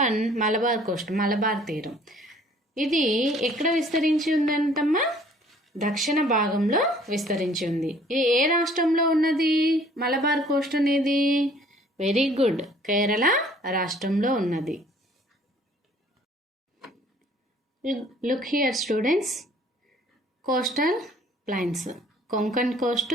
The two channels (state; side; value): normal; both; correlation 0.56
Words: Malabar coast, Malabar తీరం. ఇది ఎక్కడ విస్తరించి ఉందంటమ్మా? దక్షిణ భాగంలో విస్తరించి ఉంది. ఇది ఏ రాష్ట్రంలో ఉన్నది మలబార్ కోస్ట్ అనేది? వెరీ గుడ్, కేరళ రాష్ట్రంలో ఉన్నది. Look here students, coastal plains, Konkan coast,